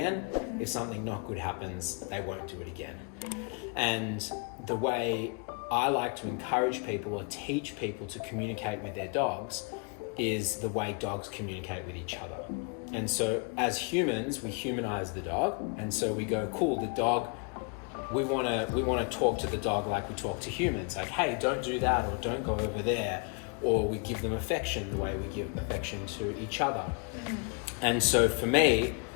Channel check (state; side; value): quieter; right; 36.6 dB